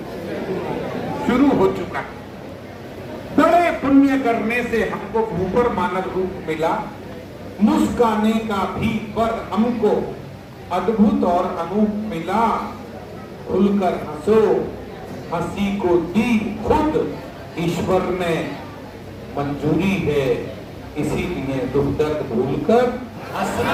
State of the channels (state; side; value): identical; both; correlation 1.00